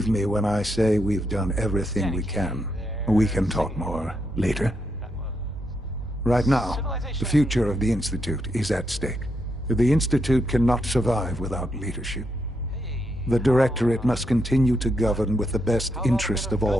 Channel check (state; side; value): normal; both; correlation 0.80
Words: me when I say we've done everything we can. We can talk more later. Right now, the future of the Institute is at stake. The Institute cannot survive without leadership. The Directorate must continue to govern with the best interest of